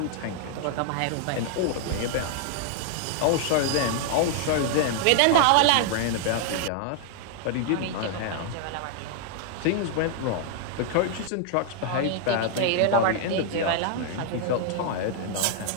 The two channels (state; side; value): different; both; correlation 0.00